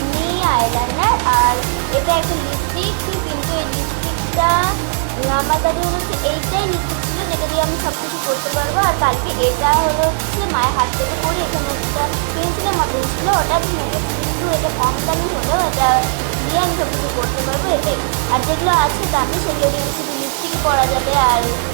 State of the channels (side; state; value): left; silent; 58 dB below the other